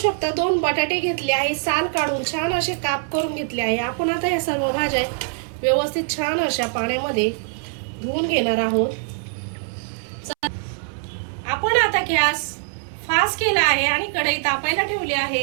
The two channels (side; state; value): left; silent; 64 dB below the other